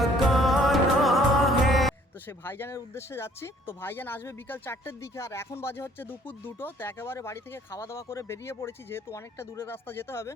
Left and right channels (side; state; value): both; normal; correlation 0.59